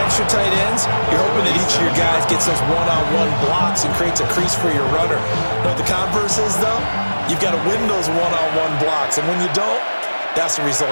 tight ends, you're hoping that each of your guys gets those one-on-one blocks and creates a crease for your runner. You know what the converse is, though? You've got to win those one-on-one blocks, and when you don't, that's the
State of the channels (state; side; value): inverted; both; correlation -1.00